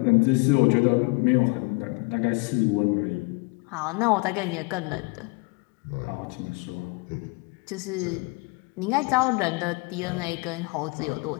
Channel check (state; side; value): quieter; right; 28.5 dB